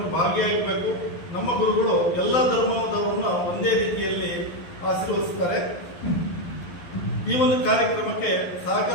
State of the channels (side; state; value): right; late; 11 ms